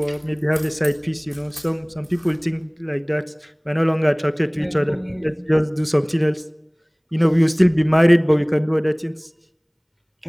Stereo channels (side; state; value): both; identical; correlation 1.00